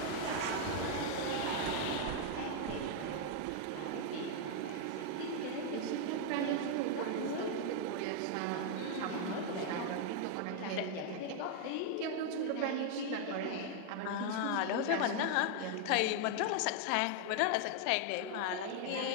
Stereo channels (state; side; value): different; both; correlation 0.00